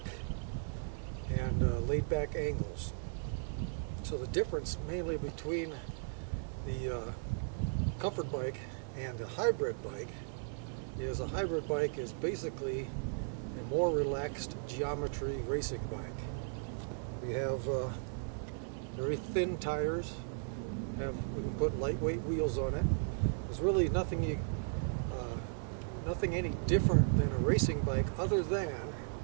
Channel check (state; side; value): silent; left; 54 dB below the other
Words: and laid back angles. So the difference mainly between the comfort bike and a hybrid bike is a hybrid bike is basically a more relaxed geometry racing bike. We have very thin tires, we can put lightweight wheels on it. There's really nothing any different than a racing bike, other than